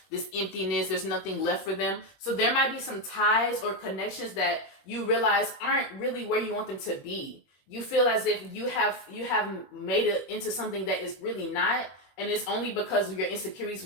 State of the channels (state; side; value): late; right; 21 ms